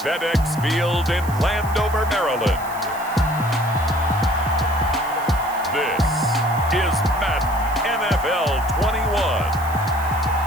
Field in Landover, Maryland, this is Madden NFL 21.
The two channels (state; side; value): noise; right; hiss, 17 dB below the sound